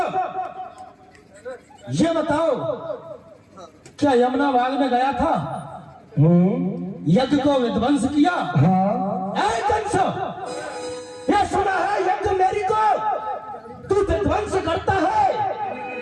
ये बताओ, क्या यमुना बाग में गया था, यज्ञ को विध्वंस किया? हाँ। ऐ कंस, ये सुना है यज्ञ मेरी को तू विध्वंस करता है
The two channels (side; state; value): both; identical; correlation 1.00